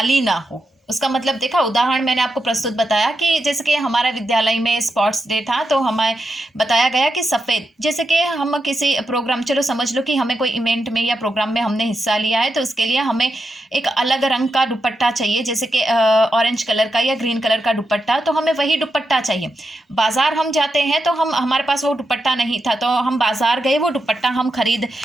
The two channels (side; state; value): both; normal; correlation 0.86